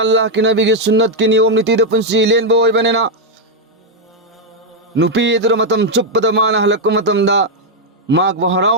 अल्लाह की नबी की सुन्नत की नियम नीति पुंसी लेनबो ओइबनेना नुपी अदुरा मतम चुप्पदा माना हलक्को मतमदा माक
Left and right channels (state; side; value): normal; both; correlation 0.01